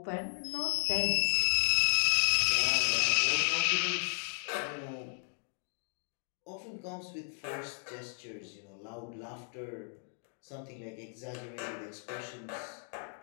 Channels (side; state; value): right; silent; 55 dB below the other